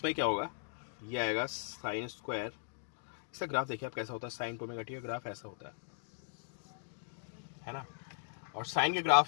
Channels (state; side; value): silent; right; digital silence